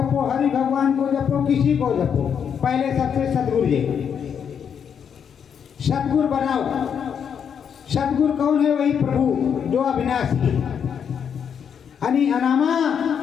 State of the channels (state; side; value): quieter; right; 7.6 dB